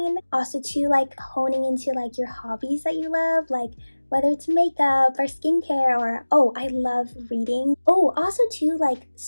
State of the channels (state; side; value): inverted; both; correlation -1.00